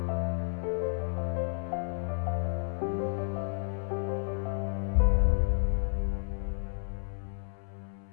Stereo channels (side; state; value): right; silent; 57 dB below the other